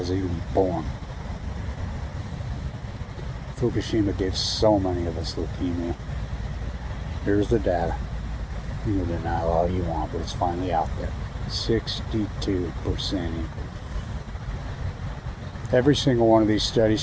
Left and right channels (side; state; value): both; identical; correlation 1.00